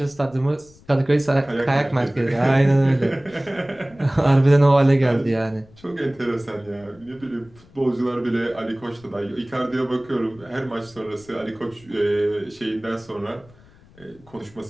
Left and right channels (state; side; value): noise; left; rumble, 26 dB below the sound